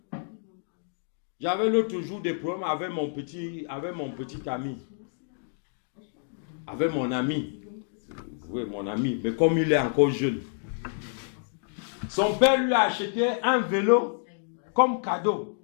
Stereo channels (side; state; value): right; silent; digital silence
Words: J'avais l'autre jour des problèmes avec mon petit ami. Avec mon ami. Oui, mon ami. Mais comme il est encore jeune. Son père lui a acheté un vélo comme cadeau.